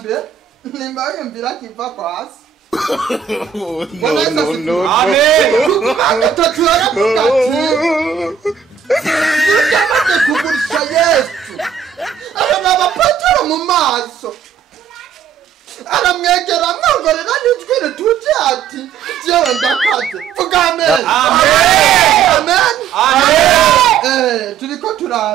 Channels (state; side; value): quieter; left; 7.7 dB